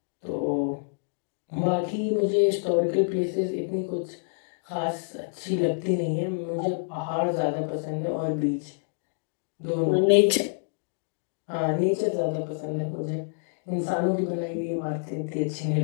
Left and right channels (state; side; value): silent; right; digital silence